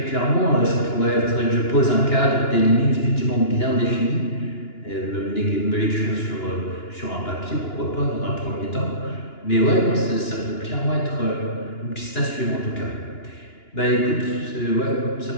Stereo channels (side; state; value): right; late; 2.9 ms